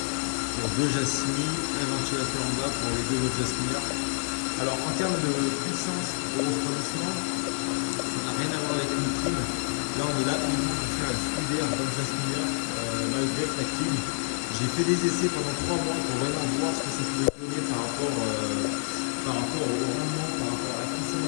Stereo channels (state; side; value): silent; right; digital silence